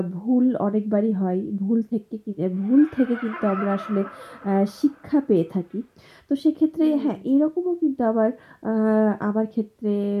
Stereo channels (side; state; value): both; identical; correlation 1.00